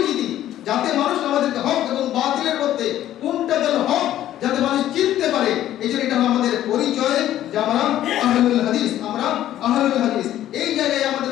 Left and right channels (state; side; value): quieter; right; 12.6 dB